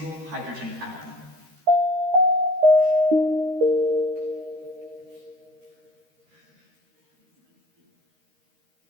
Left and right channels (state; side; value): late; left; 13 ms